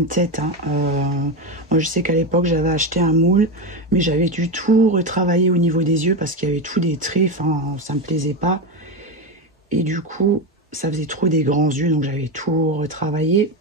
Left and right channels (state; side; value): normal; both; correlation 0.15